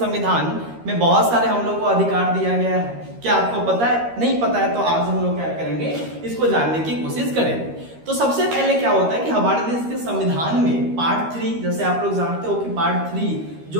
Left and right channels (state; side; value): late; left; 13 ms